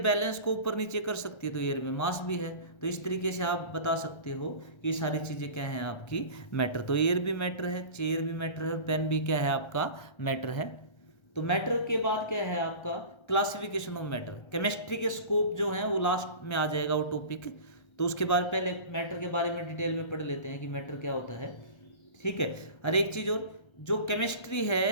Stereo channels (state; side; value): late; right; 1.3 ms